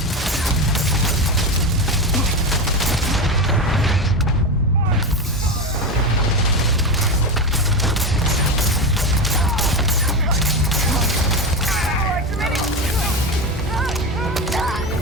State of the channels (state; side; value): normal; both; correlation 0.18